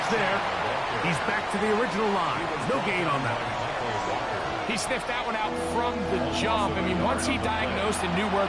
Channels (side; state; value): both; identical; correlation 1.00